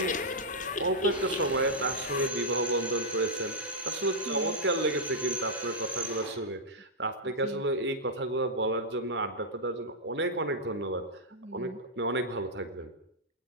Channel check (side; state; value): both; normal; correlation -0.08